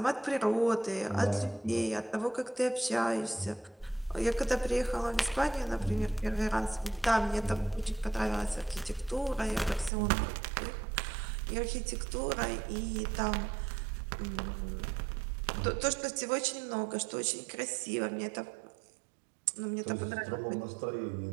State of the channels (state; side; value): drops out; left; at 9.9 s